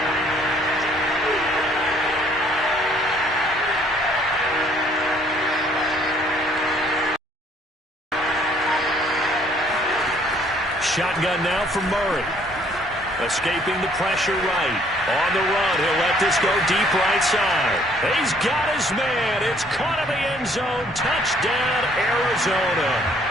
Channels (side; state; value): both; normal; correlation 0.62